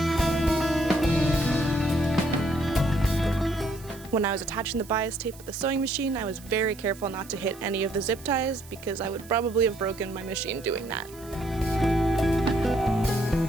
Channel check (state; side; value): noise; right; hiss, 21 dB below the sound